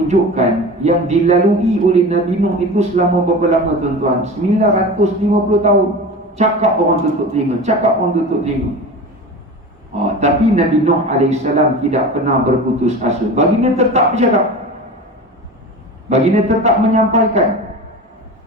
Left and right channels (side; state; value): both; normal; correlation 0.32